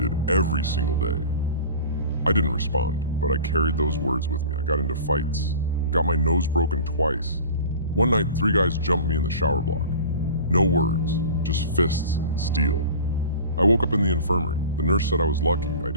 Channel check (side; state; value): both; inverted; correlation -0.39